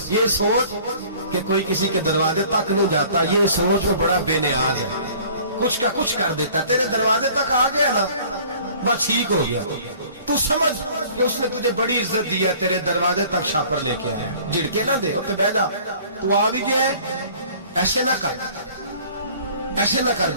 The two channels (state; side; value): inverted; both; correlation -0.50